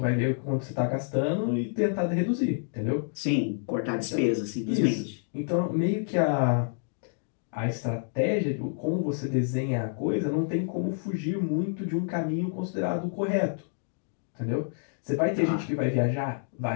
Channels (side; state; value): right; silent; digital silence